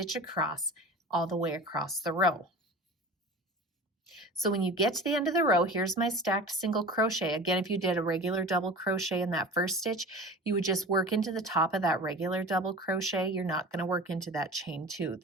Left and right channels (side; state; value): both; normal; correlation 0.36